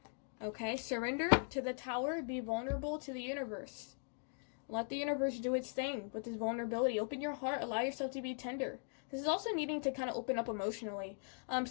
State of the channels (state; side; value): silent; right; 51 dB below the other